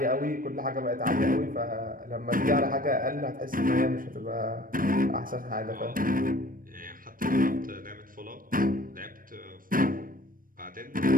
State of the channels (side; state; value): left; late; 0.41 ms